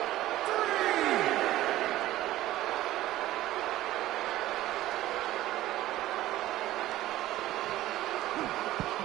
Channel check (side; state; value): left; quieter; 15.2 dB